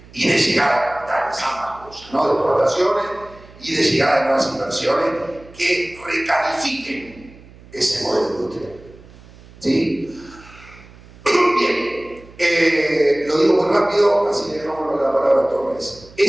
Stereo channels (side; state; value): right; noise; hum, 22 dB below the sound